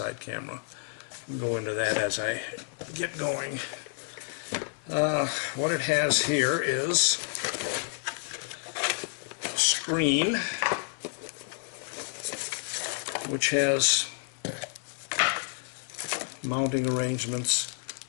camera. I'll go into that as I get going. What it has here is a screen which has mounting arrangements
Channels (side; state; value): right; silent; digital silence